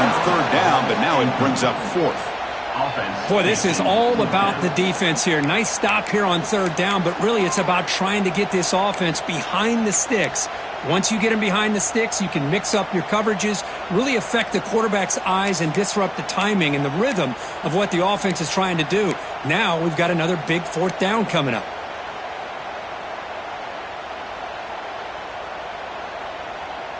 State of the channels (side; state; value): both; identical; correlation 1.00